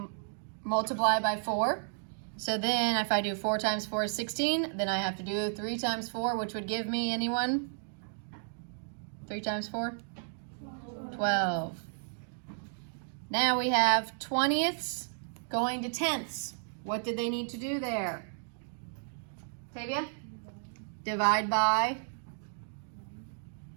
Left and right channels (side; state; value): left; silent; digital silence